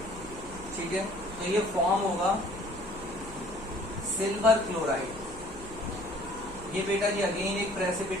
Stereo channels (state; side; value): noise; right; hum, 16 dB below the sound